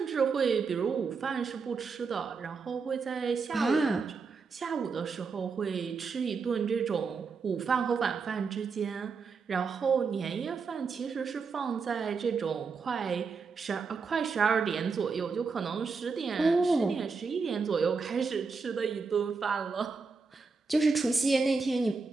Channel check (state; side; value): quieter; left; 4.9 dB